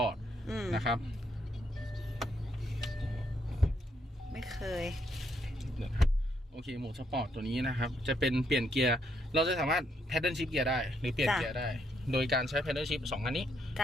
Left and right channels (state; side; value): normal; both; correlation 0.74